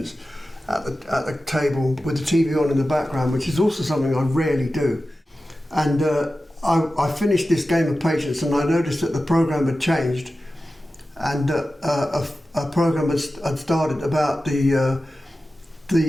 at the table with the TV on in the background, which is also something I rarely do. And I finished this game of patience, and I noticed that the program had changed, and a program had started about the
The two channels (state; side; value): normal; both; correlation 0.94